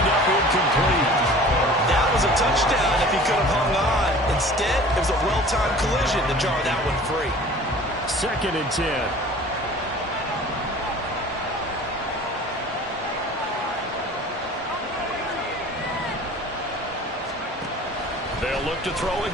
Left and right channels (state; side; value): normal; both; correlation 0.44